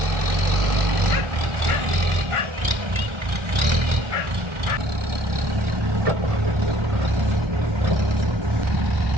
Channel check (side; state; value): left; late; 1.4 ms